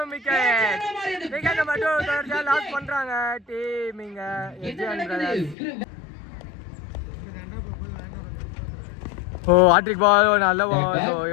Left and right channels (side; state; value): right; drops out; at 5.6 s